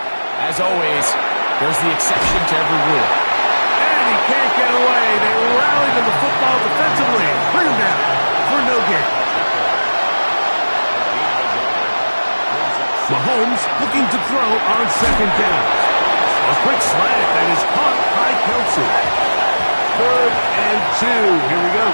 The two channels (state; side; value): inverted; both; correlation -1.00